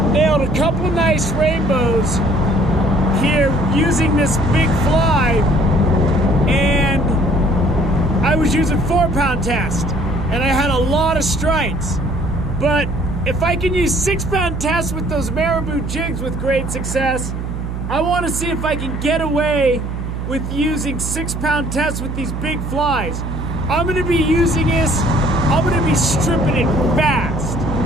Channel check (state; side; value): noise; right; hum, 5 dB below the sound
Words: nailed a couple nice rainbows here using this big fly, and I was using 4-pound test, and I had a lot of strikes. But if I can use 6-pound test with those marabou jigs with great success, I want to see if I can get away with using 6-pound test with these big flies. I'm going to be using this, I'm going to be stripping it fast.